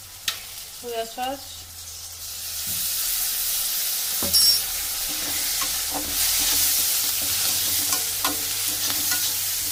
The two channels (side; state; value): both; identical; correlation 1.00